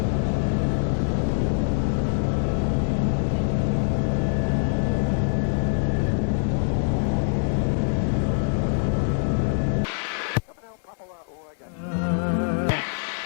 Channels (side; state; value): right; silent; digital silence